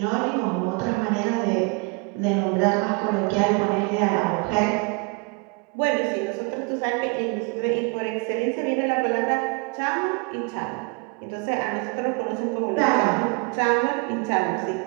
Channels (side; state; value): left; quieter; 30.7 dB